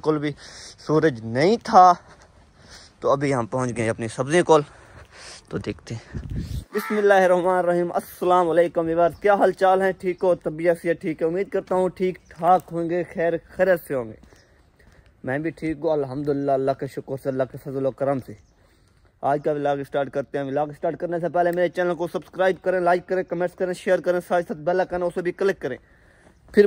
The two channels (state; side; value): identical; both; correlation 1.00